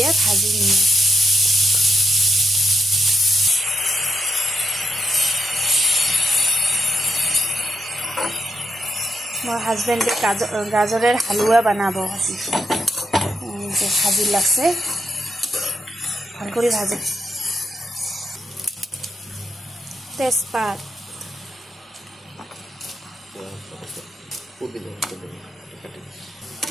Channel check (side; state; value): both; normal; correlation 0.84